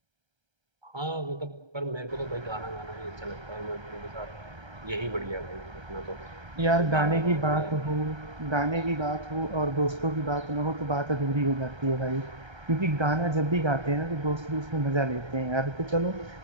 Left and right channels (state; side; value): late; left; 1.3 ms